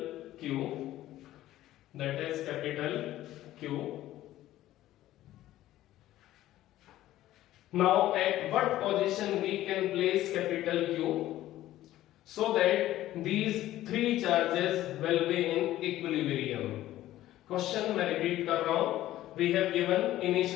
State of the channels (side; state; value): right; quieter; 14.4 dB